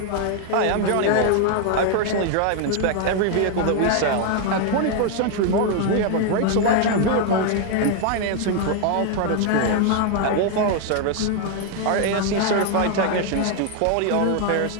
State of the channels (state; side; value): different; both; correlation 0.00